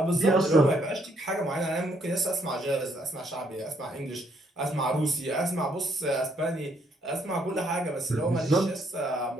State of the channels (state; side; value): normal; both; correlation 0.70